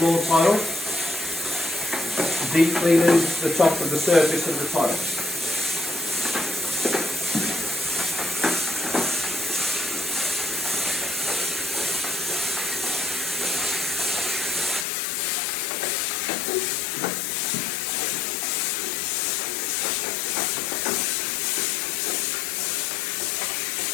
tile, deep cleaning the top of the surface of the tile.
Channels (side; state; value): right; drops out; at 14.9 s